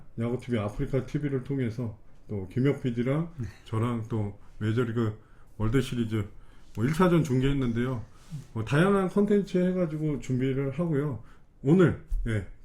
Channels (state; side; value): identical; both; correlation 1.00